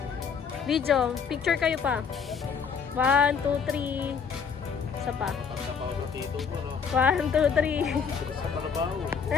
Video, picture kayo pa. 1, 2, 3. Isa pa. 1, 2, 3.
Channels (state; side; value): quieter; right; 6.4 dB